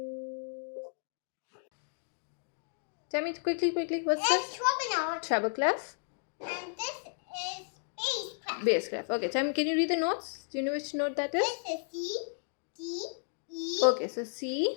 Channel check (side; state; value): right; silent; digital silence